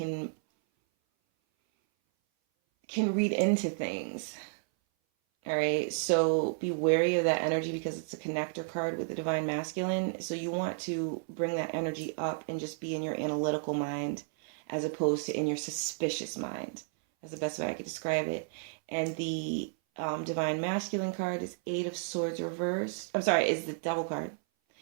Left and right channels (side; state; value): left; silent; 56 dB below the other